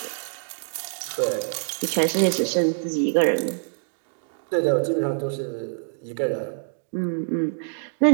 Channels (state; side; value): silent; left; digital silence